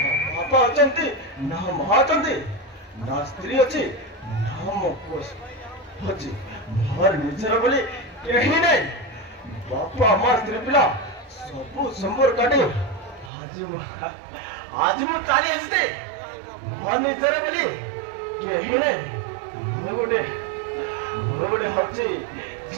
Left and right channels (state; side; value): drops out; left; at 13.3 s